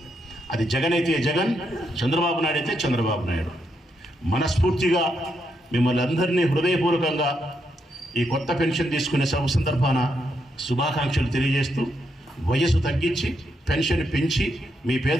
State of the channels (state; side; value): normal; both; correlation 0.80